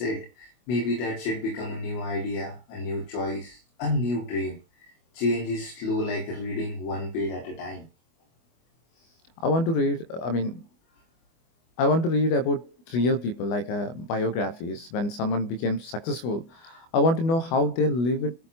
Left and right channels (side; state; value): right; late; 24 ms